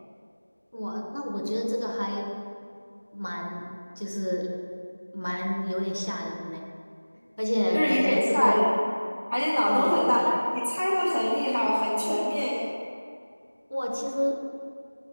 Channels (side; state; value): both; inverted; correlation -1.00